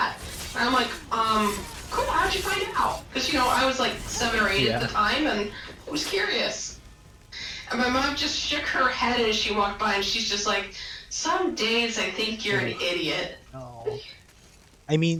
And I'm like, cool, how'd you find out? Because, you know, I was like 7 or 8 at the time and I was curious. And my mom just shook her head as she walked by and she's just like, some days I think you're an idiot. No. I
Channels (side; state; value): both; identical; correlation 1.00